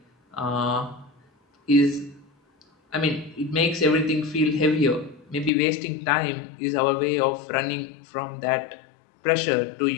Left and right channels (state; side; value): drops out; right; at 5.5 s